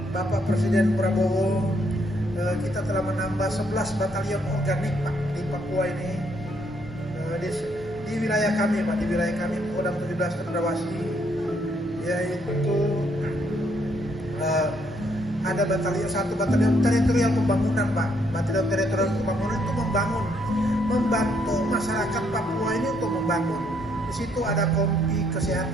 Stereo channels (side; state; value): both; normal; correlation 0.71